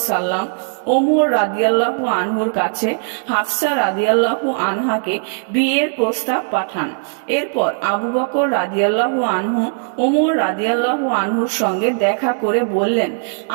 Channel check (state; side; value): silent; left; digital silence